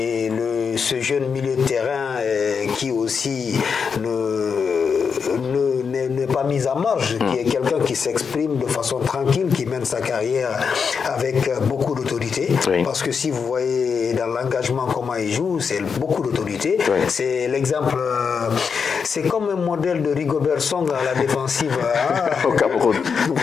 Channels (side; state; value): right; quieter; 6.0 dB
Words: ce jeune milieu de terrain qui aussi n'est pas mis à marge, qui est quelqu'un qui s'exprime de façon tranquille, qui mène sa carrière avec beaucoup d'autorité, parce que si vous voyez dans l'engagement comment il joue, c'est beaucoup d'autorité. C'est l'exemple, c'est comme un modèle de Rigobert Song à la défensive au Cameroun.